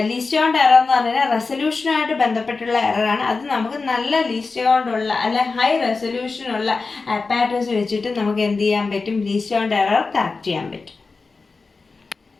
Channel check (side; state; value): right; quieter; 4.2 dB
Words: ലീസ്റ്റ് കൗണ്ട് എറർ എന്ന് പറഞ്ഞാൽ റെസൊല്യൂഷനുമായിട്ട് ബന്ധപ്പെട്ടുള്ള എററാണ്. അത് നമുക്ക് നല്ല ലീസ്റ്റ് കൗണ്ടുള്ള അല്ലെ ഹൈ റെസൊല്യൂഷനുള്ള അപ്പാരറ്റസ് വെച്ചിട്ട് നമുക്ക് എന്ത് ചെയ്യാൻ പറ്റും, ലീസ്റ്റ് കൗണ്ട് എറർ കറക്റ്റ് ചെയ്യാൻ പറ്റും.